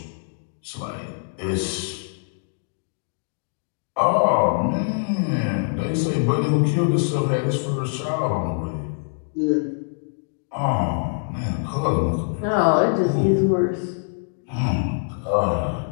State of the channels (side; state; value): right; silent; digital silence